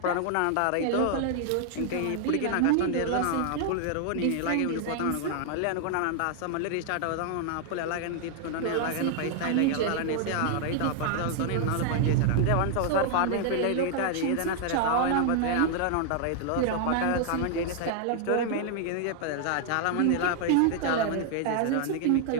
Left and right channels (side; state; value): both; different; correlation 0.00